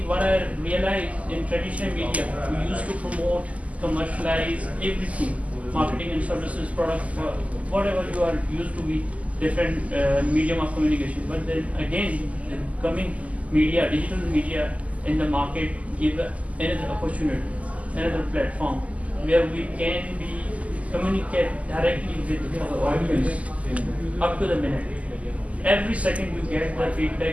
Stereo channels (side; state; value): left; late; 0.070 ms